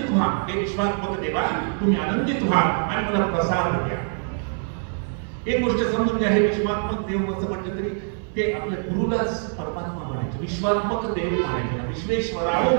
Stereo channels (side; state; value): left; silent; 60 dB below the other